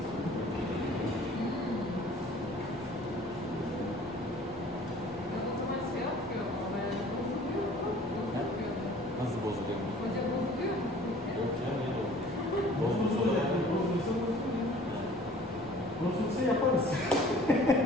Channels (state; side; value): normal; both; correlation 0.50